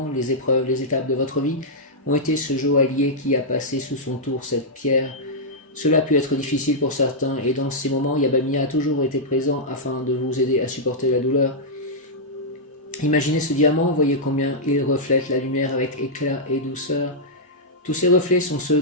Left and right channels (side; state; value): both; normal; correlation -0.08